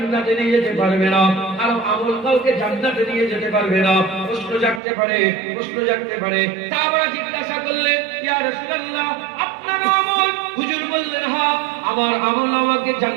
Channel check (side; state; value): left; drops out; at 4.8 s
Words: নিয়ে যেতে পারবে না, কারো আমল কাউকে জান্নাতে নিয়ে যেতে পারবে না। প্রশ্ন জাগতে পারে, প্রশ্ন জাগতে পারে। সাহাবারা জিজ্ঞাসা করলেন, ইয়া রাসূলুল্লাহ, আপনার আমল? হুজুর বললেন, হ্যাঁ, আমার আমল আমাকে